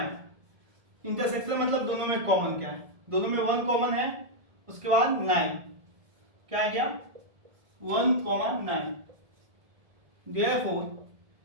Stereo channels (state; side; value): late; left; 1.7 ms